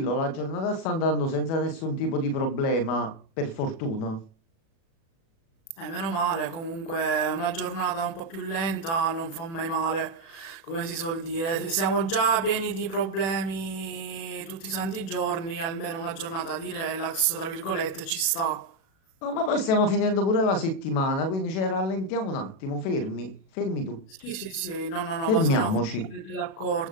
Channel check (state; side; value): late; right; 37 ms